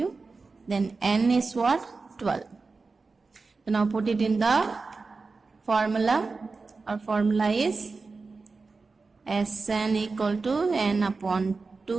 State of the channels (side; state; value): left; quieter; 4.1 dB